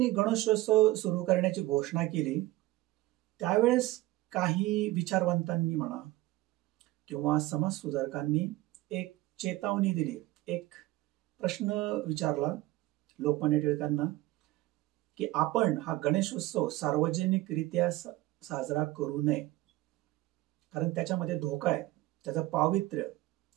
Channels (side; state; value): left; quieter; 17.6 dB